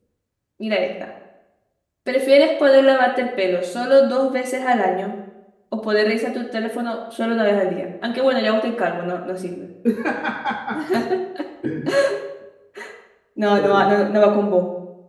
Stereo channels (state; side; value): identical; both; correlation 1.00